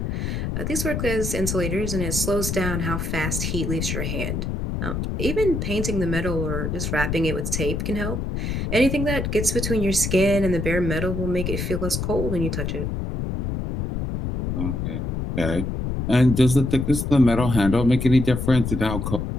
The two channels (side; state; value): left; noise; rumble, 2 dB below the sound